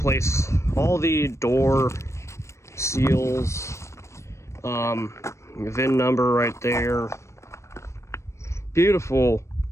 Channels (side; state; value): right; late; 0.14 ms